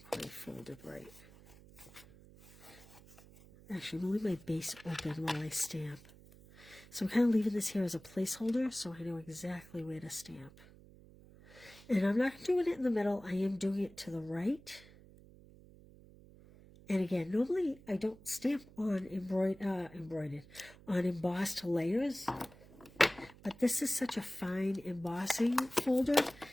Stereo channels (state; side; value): noise; right; hum, 22 dB below the sound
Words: quite folded right. Actually, I'm leaving my base open while I stamp. So I'm kind of leaving this here as a placeholder so I know exactly where to stamp. And I'm not doing it in the middle. I am doing it to the right. And again, normally I don't stamp on on embossed layers. But this is such a fine embossing folder